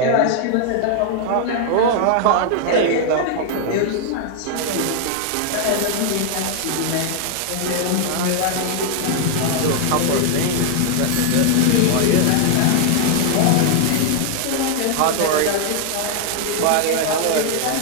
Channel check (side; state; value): both; different; correlation 0.00